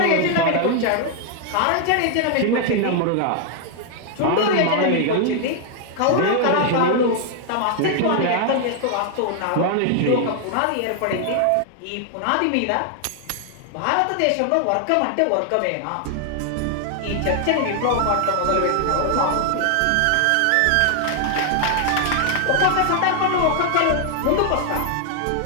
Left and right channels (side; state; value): both; different; correlation 0.00